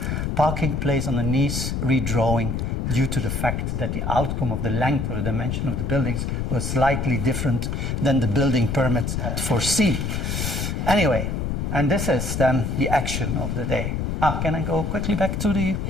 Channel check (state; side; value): noise; left; rumble, 1 dB below the sound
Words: parking place on her knees, redrawing, due to the fact that the outcome of the length or the dimension of the buildings was slightly different than the building permit had foreseen. Anyway, and this is then the action of the day. Can I go quickly back to the...